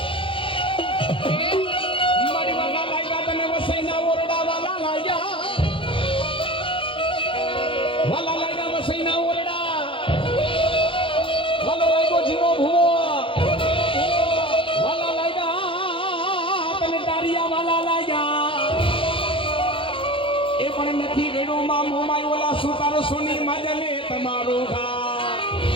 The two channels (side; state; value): right; late; 0.25 ms